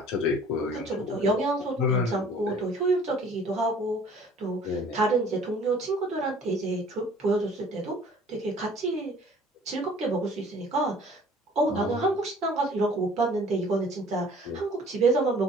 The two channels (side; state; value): both; normal; correlation 0.52